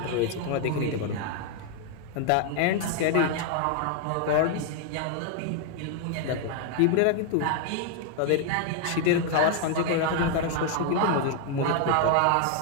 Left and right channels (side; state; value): both; different; correlation 0.00